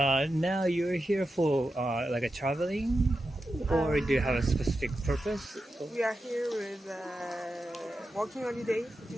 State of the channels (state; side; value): normal; both; correlation 0.90